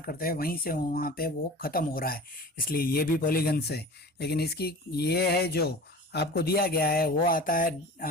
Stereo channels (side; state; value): both; normal; correlation 0.38